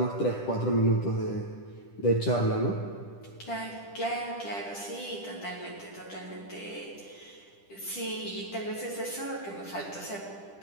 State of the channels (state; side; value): late; right; 10 ms